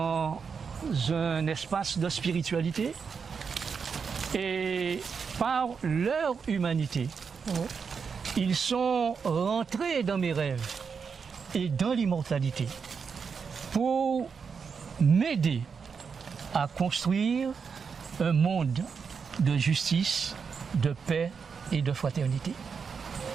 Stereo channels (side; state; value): left; quieter; 5.9 dB